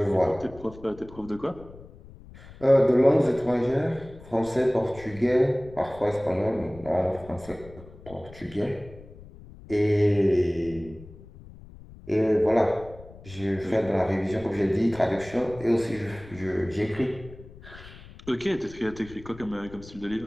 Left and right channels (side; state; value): left; noise; rumble, 19 dB below the sound